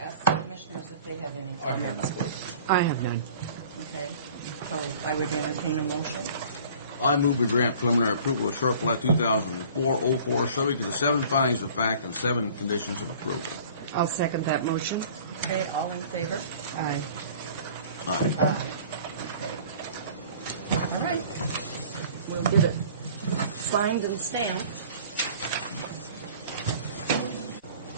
ask the commissioners if they have any comments. I have none. Okay, so I would entertain a motion. I move we grant preliminary approval of short plat 2004-04, subject to the 7 findings of fact and 7 conditions of approval. I'll second that motion. Okay, all in favor? Aye. Aye. Aye. Okay. All right. We'll get it signed and stamped.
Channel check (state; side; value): inverted; both; correlation -0.48